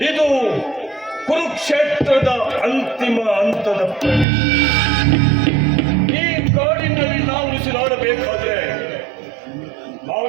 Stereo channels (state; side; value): drops out; left; at 4.2 s